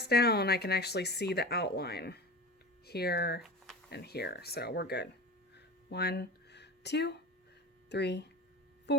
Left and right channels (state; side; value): normal; both; correlation 0.30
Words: down, I can actually see the outline here and here, so we're good. 1, 2, 3,